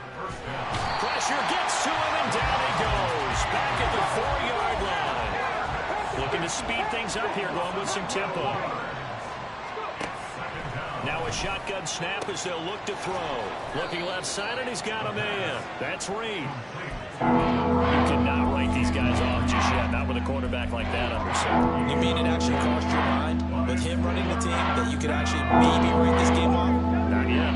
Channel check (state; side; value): identical; both; correlation 1.00